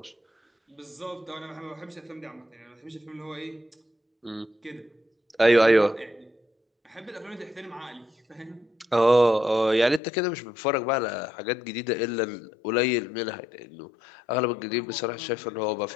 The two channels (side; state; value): right; drops out; at 10.0 s